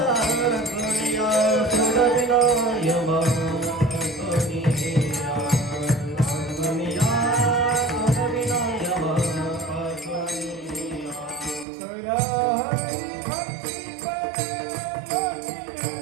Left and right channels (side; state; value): left; drops out; at 11.7 s